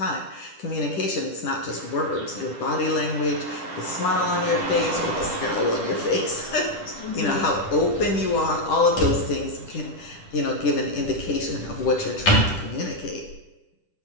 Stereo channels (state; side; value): late; right; 10 ms